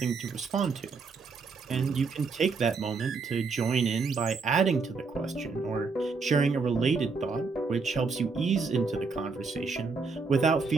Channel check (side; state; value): left; quieter; 4.5 dB